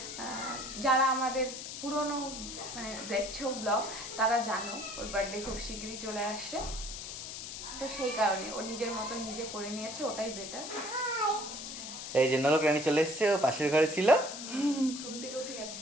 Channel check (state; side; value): noise; left; hiss, 8 dB below the sound